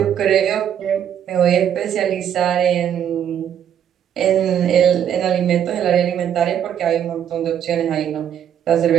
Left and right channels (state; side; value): quieter; left; 9.3 dB